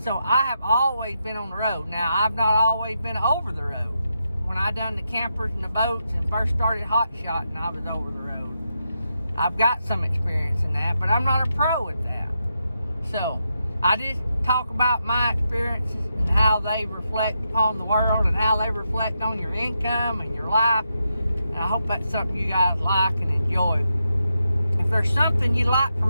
I have always been on the road. Now, I've not always been over the road. When I done the campers and the boats and first started Hotshotting, I was over the road. I've got some experience in that, but I'm not a pro at that. So I just talk about my experiences and how they reflect upon the world and how they reflect on your income and your life. And I hope that's something you guys like and enjoy. If there's something you'd like for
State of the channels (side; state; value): both; inverted; correlation -0.84